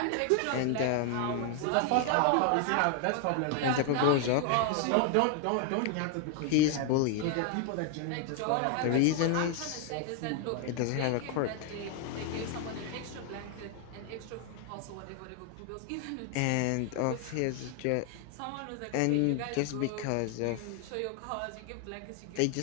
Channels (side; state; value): both; different; correlation 0.00